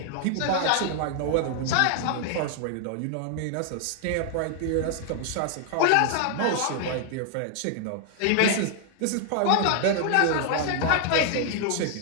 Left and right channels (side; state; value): both; different; correlation 0.00